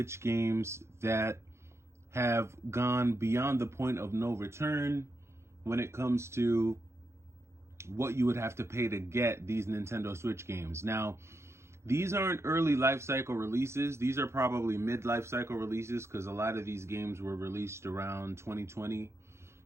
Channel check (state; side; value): late; left; 0.13 ms